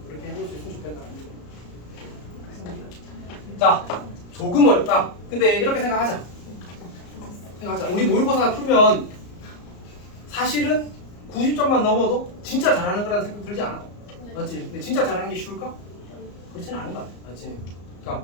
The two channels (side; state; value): right; late; 34 ms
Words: 그렇게 해볼 수 있으면 좋겠다는 얘기. 자, 조금 어렵다. 근데 이렇게 생각하자. 우리 모의고사 풀면 사실은 90점만 넘어도 진짜 잘하는 거라는 생각 들지 않아? 맞지? 근데 진짜 잘하는 게 쉬울까? 그렇지는 않은 것 같아. 맞지?